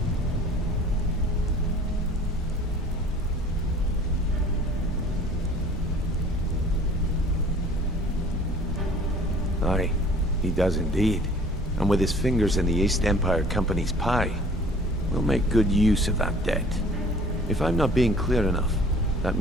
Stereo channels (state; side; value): normal; both; correlation 0.50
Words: Aye, he does indeed. And with his fingers in the East Empire Company's pie, we'll make good use of that debt. If I'm not being clear enough, that